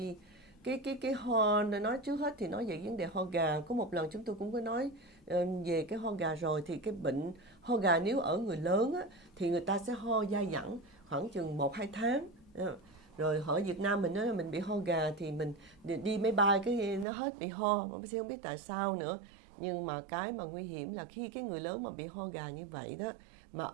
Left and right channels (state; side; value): drops out; left; at 17.1 s